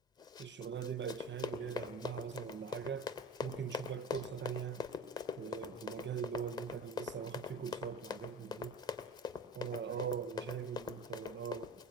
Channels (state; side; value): normal; both; correlation 0.35